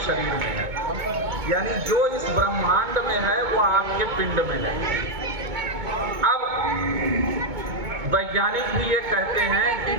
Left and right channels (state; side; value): late; left; 2.2 ms